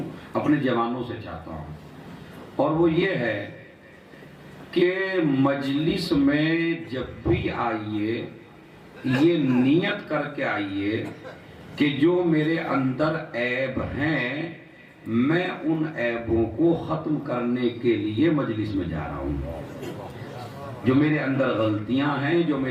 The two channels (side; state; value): both; identical; correlation 1.00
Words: اپنے جوانوں سے چاہتا ہوں، اور وہ یہ ہے کہ مجلس میں جب بھی آئیے یہ نیت کر کے آئیے کہ جو میرے اندر عیب ہیں میں ان عیبوں کو ختم کرنے کے لیے مجلس میں جا رہا ہوں۔ جو میرے اندر غلطیاں ہیں، جو